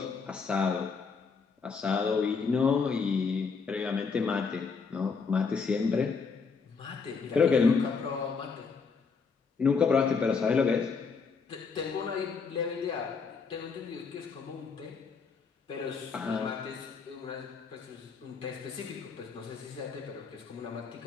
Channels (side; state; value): right; quieter; 5.2 dB